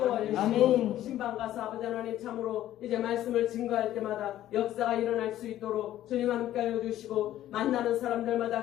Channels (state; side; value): quieter; right; 13.0 dB